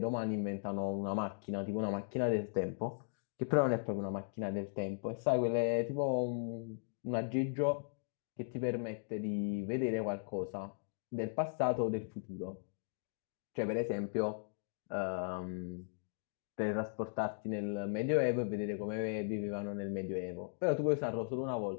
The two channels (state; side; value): silent; right; digital silence